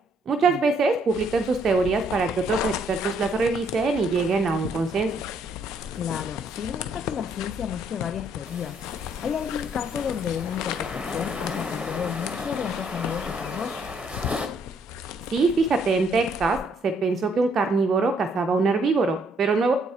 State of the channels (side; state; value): both; normal; correlation 0.68